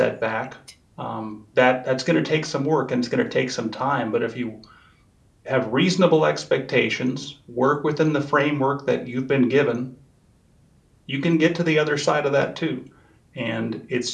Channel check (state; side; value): identical; both; correlation 1.00